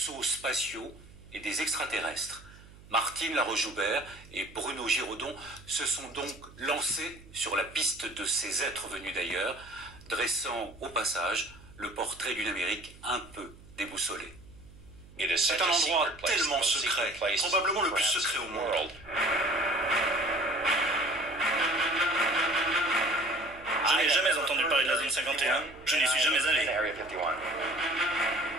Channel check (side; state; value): right; noise; hum, 21 dB below the sound